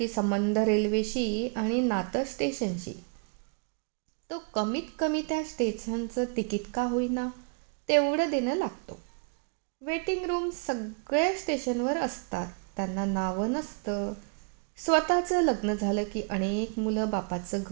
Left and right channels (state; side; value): quieter; left; 35.5 dB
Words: संबंध रेल्वेशी आणि नातं स्टेशनशी. तो कमीत कमी त्या स्टेशनचं तिकीट का होईना तेवढं देणं लागतो. वेटिंग रूम सगळ्या स्टेशनवर असतात, त्यांना नावं नसतं. स्वतःचं लग्न झालं की अनेक मुलं बापाचं